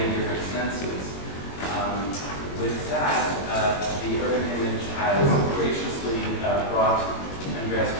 different senses. With that, the urban image has graciously brought Andreas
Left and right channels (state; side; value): late; right; 21 ms